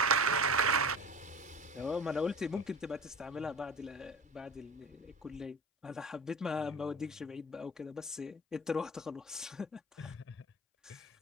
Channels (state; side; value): normal; both; correlation 0.35